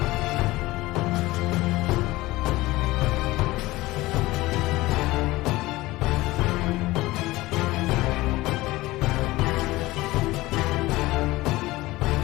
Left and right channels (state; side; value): quieter; right; 19.1 dB